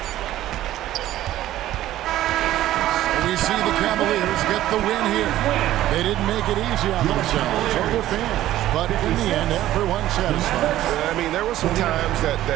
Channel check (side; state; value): left; quieter; 13.9 dB